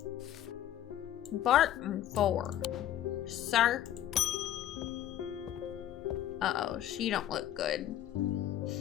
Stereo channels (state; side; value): quieter; right; 11.9 dB